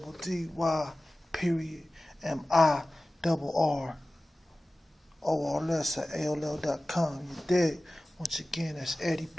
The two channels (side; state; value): both; normal; correlation 0.96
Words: period MIRRORLS at AOL.com. You dig? Once again, that's Eddie